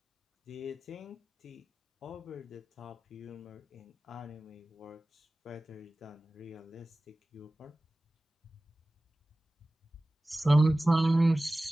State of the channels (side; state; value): both; normal; correlation 0.97